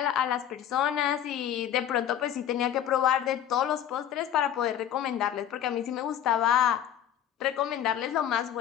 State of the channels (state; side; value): quieter; right; 10.4 dB